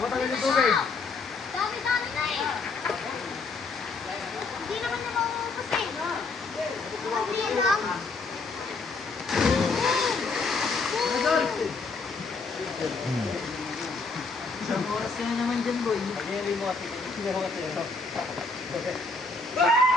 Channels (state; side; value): quieter; right; 4.0 dB